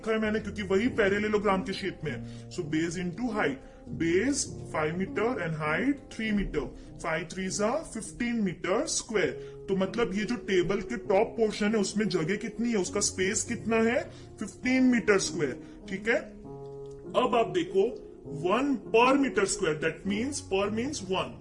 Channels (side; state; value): both; identical; correlation 1.00